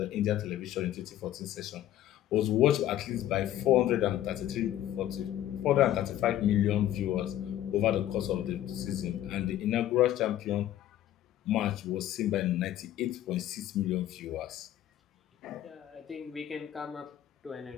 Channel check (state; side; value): quieter; right; 12.5 dB